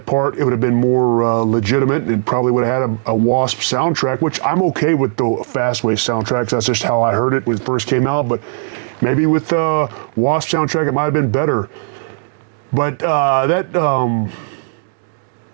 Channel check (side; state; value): left; silent; digital silence